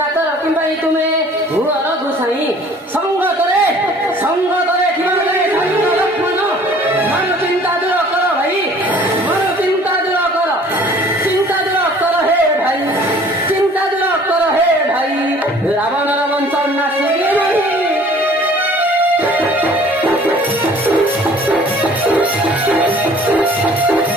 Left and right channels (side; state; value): both; normal; correlation 0.52